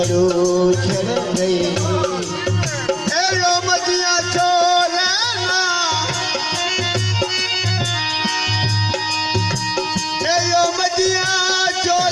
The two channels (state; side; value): identical; both; correlation 1.00